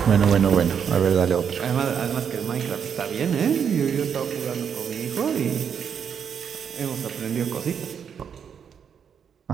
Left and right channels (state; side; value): quieter; left; 7.6 dB